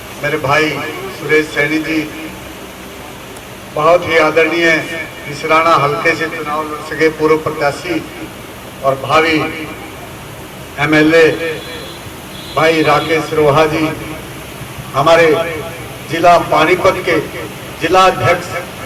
मेरे भाई सुरेश सैनी जी, बहुत ही आदरणीय इसराना हल्के से चुनाव लड़ सके पूर्व प्रत्याशी और भावी एमएलए भाई राकेश रोहा जी, हमारे जिला पानीपत के जिला अध्यक्ष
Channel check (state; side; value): identical; both; correlation 1.00